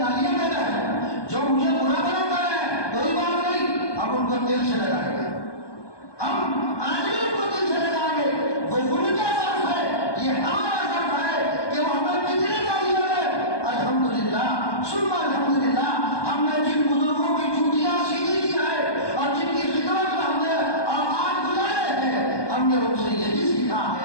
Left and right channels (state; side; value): late; right; 1.2 ms